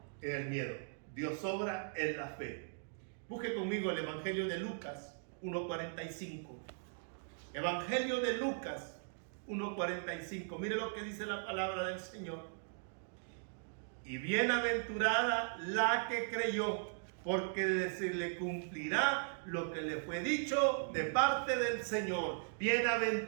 en el miedo, Dios obra en la fe. Busque conmigo el Evangelio de Lucas 1:45. Evangelio de Lucas 1:45. Mire lo que dice la palabra del Señor. Y bienaventurada la que creyó, porque se le cumplirá lo que le fue dicho de parte del Señor.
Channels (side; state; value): left; silent; digital silence